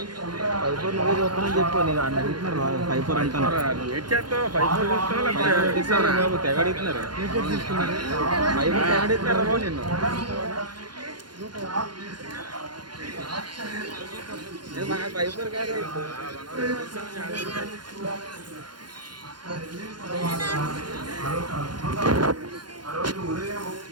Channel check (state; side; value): late; left; 0.71 ms